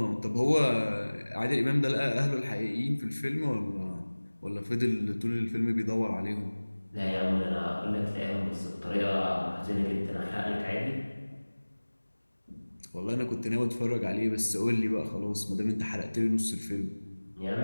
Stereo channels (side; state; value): both; inverted; correlation -1.00